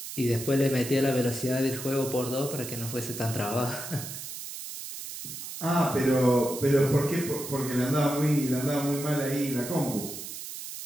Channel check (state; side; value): noise; right; hiss, 9 dB below the sound